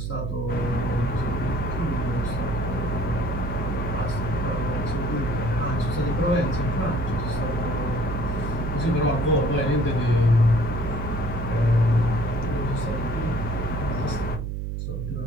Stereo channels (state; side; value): noise; right; hum, 3 dB below the sound